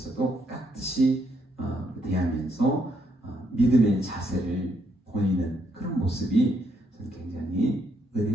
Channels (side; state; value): both; normal; correlation 0.75